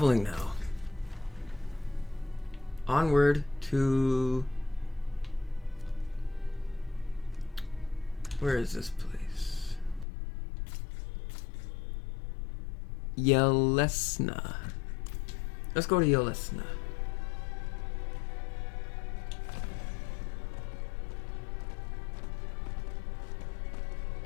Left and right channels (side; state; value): right; drops out; at 10.1 s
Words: now. Onward to... Where is this place? Yelesna. Let's go to Yelesna.